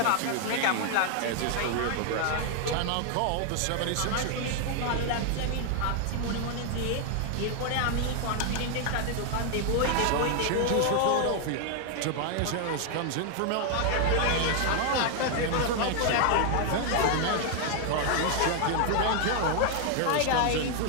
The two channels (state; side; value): different; both; correlation 0.00